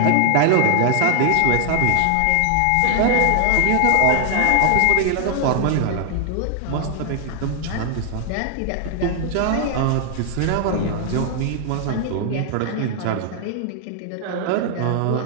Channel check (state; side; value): different; both; correlation 0.00